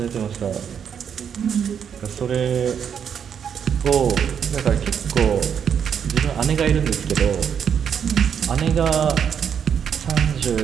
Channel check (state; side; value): quieter; left; 7.8 dB